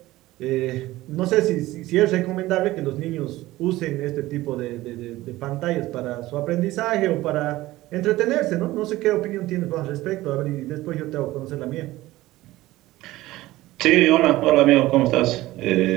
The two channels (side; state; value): left; quieter; 17.3 dB